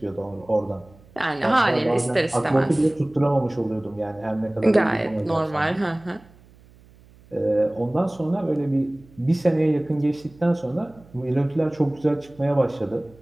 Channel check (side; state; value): right; noise; hum, 26 dB below the sound